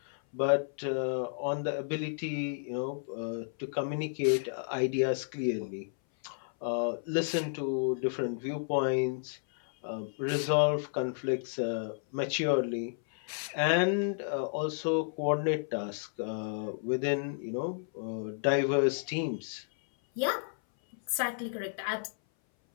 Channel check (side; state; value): right; silent; 56 dB below the other